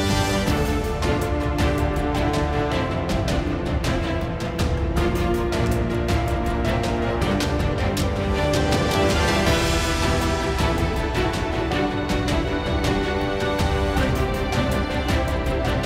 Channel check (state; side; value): identical; both; correlation 1.00